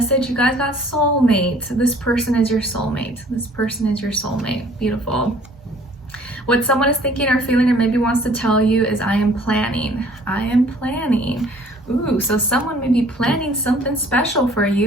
you guys got soulmate. This person is your soulmate. This person is your soulmate. Beautiful. What someone is thinking or feeling or maybe wants to tell you is, I am planning. I am planning. Ooh, so someone may be planning something special for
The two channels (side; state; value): both; normal; correlation 0.54